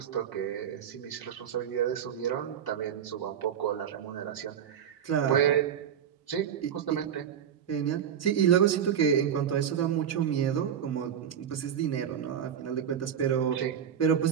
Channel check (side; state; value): left; quieter; 8.8 dB